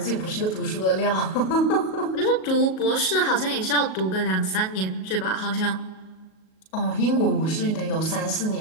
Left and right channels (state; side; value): late; right; 37 ms